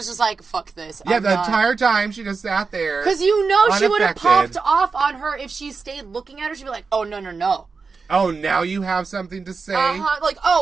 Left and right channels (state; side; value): quieter; left; 4.7 dB